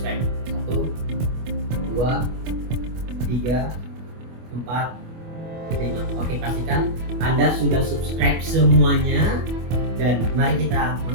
1, 2, 3, 4, 5. Oke, pastikan Anda sudah subscribe semuanya dan mari kita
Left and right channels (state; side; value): late; left; 25 ms